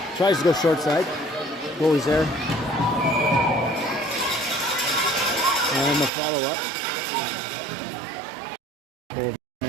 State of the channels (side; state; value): left; drops out; at 6.1 s